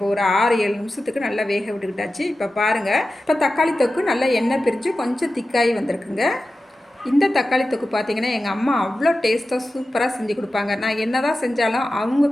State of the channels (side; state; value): both; normal; correlation 0.93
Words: ஒரு 6-7 நிமிஷத்துக்கு நல்லா வேக விட்டுக்கிட்டாச்சு. இப்போ பாருங்கள், இப்போ தக்காளி தொக்கு நல்லா எண்ணெய் பிரித்து கொஞ்சம் திக்காகி வந்திருக்குங்க. இந்த தக்காளி தொக்கு பார்த்திங்கன்னா எங்கள் அம்மா அவ்வளோ டேஸ்ட்டாக சூப்பராக செஞ்சு கொடுப்பாங்க. நான் என்ன தான் செஞ்சாலும் அவங்க